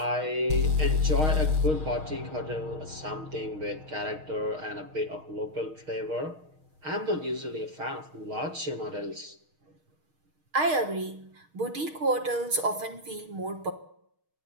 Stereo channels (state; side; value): late; left; 6.4 ms